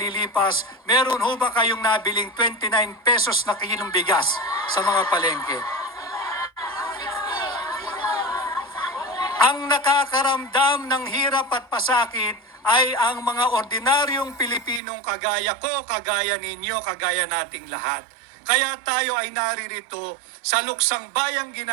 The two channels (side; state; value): left; drops out; at 14.8 s